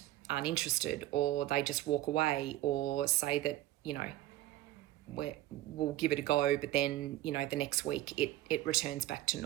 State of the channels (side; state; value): left; quieter; 15.2 dB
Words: aren't interested, or they just walk away, or say that we'll give it a go, but then the next week it returns back to